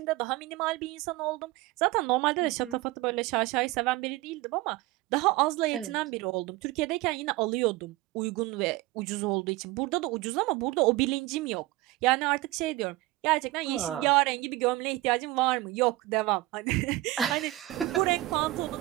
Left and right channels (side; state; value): left; quieter; 18.8 dB